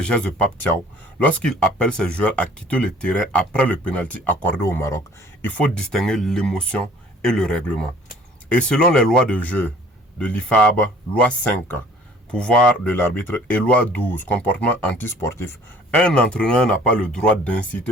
de Pape Thiaw, lorsqu'il appelle ses joueurs à quitter le terrain après le pénalty accordé au Maroc, il faut distinguer l'émotion et le règlement. Et selon les lois de jeu de l'IFAB, loi 5, pouvoir de l'arbitre, et loi 12, comportement antisportif, un entraîneur n'a pas le droit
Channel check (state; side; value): normal; both; correlation 0.52